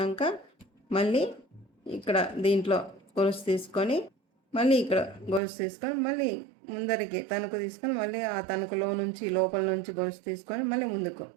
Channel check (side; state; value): left; drops out; at 5.4 s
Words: మళ్ళీ ఇక్కడ దీంట్లో గొలుసు తీసుకొని మళ్ళీ ఇక్కడ గొలుసు తీసుకొని మళ్ళీ ముందరికి తణుకు తీసుకొని మళ్ళీ ఆ తణుకులో నుంచి లోపల నుంచి గొలుసు తీసుకొని మళ్ళీ ముందుకు